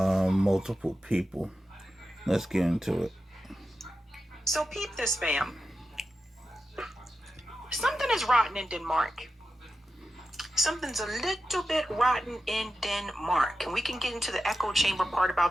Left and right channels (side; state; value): both; normal; correlation 0.91